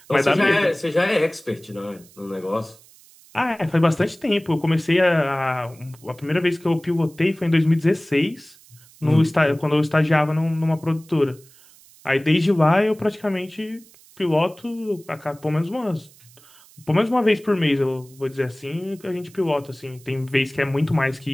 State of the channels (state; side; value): noise; right; hiss, 26 dB below the sound